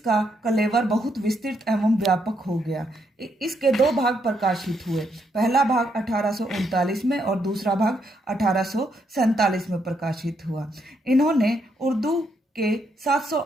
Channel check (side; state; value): both; normal; correlation 0.76